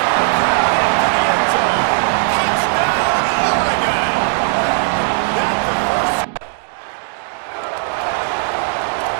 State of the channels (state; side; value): silent; left; digital silence